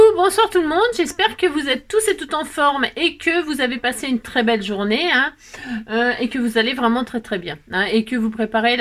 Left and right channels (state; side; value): identical; both; correlation 1.00